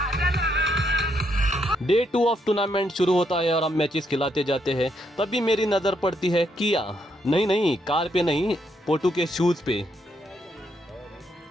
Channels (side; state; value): both; normal; correlation 0.76